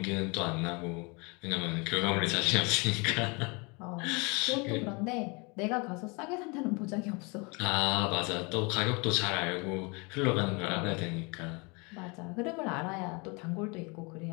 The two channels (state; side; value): quieter; right; 29.8 dB